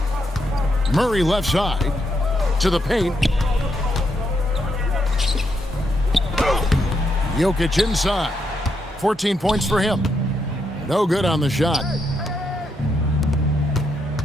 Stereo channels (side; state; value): both; normal; correlation 0.79